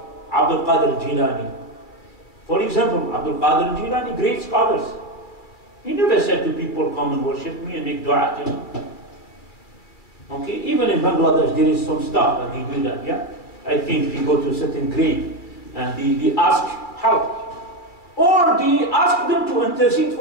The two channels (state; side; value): late; right; 2.3 ms